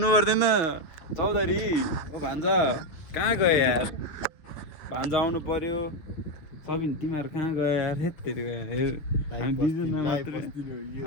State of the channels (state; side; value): late; right; 6.7 ms